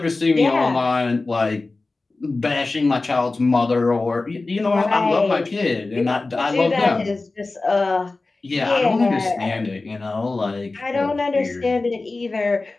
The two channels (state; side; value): quieter; right; 3.4 dB